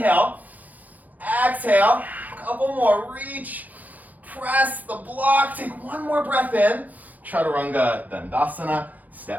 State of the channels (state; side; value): late; left; 0.080 ms